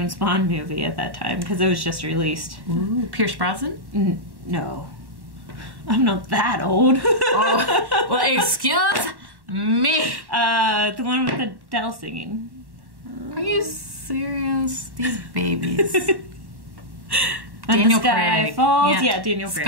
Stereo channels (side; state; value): left; late; 1.1 ms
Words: Bond movie at that time, because it was just released. Ooh, Pierce Brosnan? No. I'm not that old. Oh, well, excuse me. The one with Adele singing. Are you serious? These babies. When Daniel the sky Craig. falls. Yeah, Daniel Craig.